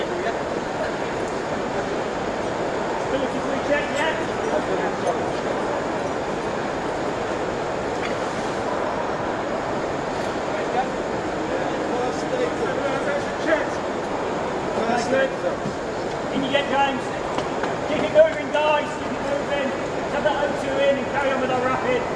Ability to recheck yet? In you get, James. Keep it moving, guys. Keep it moving. Have that O2 in and carry on with our rapid.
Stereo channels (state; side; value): identical; both; correlation 1.00